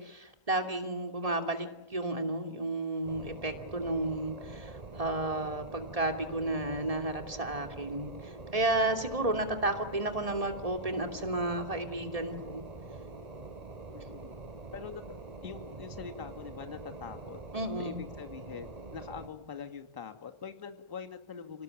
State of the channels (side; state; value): left; late; 1.7 ms